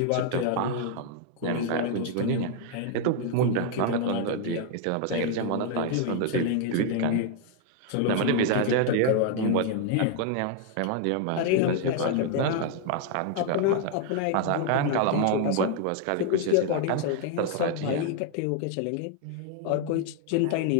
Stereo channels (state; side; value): different; both; correlation 0.00